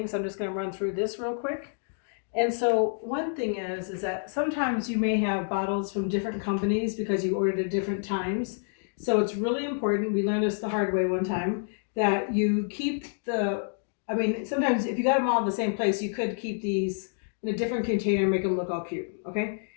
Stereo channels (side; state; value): right; silent; digital silence